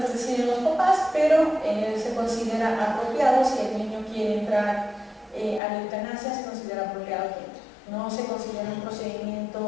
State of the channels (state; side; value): drops out; right; at 5.6 s